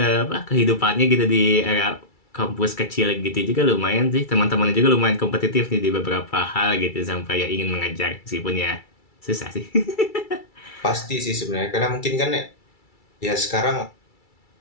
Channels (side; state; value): right; late; 2.3 ms